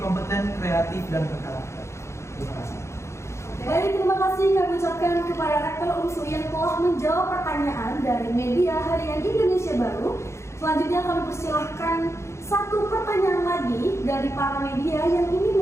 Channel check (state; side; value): late; right; 0.13 ms